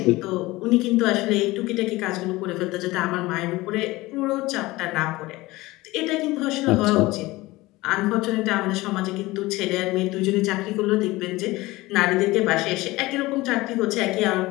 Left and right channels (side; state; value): right; quieter; 19.9 dB